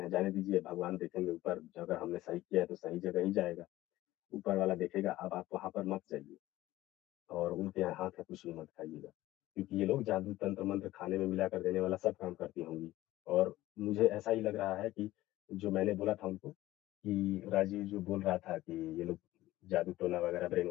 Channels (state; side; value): quieter; right; 16.2 dB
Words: जाने दीजिए, भगवान देखेंगे ऊपर, अगर हमने सही किया है तो सही जगह ही जाएगा। ऊपर वाला देखेगा, अब आप वहाँ पर मत जाइए और उनके यहाँ हाथ का कुछ भी मत खाइएगा। क्योंकि ये लोग जादू तंत्र मंत्र खाने में मिलाकर देने वाला सब काम करती होंगी। और मुझे ऐसा ही लग रहा है कि जो मैंने बोला था उनको कि राजीव जो बोल रहा था कि ये लोग जादू टोना वगैरह, ब्रेन